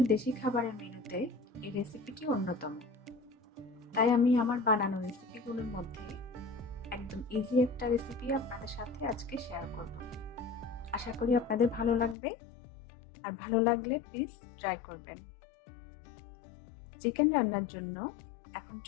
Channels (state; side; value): drops out; right; at 12.2 s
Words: দেশি খাবারের মেনুতে এই রেসিপিটি অন্যতম, তাই আমি আমার বানানো রেসিপিগুলোর মধ্যে একদম ইজি একটা রেসিপি আপনাদের সাথে আজকে শেয়ার করব। আশা করি আপনাদের ভালো লাগবে, আর ভালো লাগলে প্লিজ ট্রাই করবেন। চিকেন রান্নার জন্য এখন